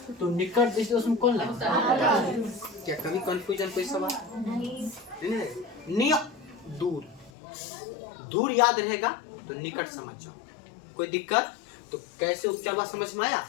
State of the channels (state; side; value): drops out; right; at 7.3 s